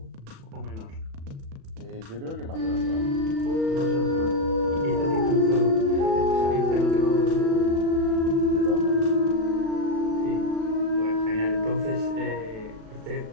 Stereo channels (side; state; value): left; late; 36 ms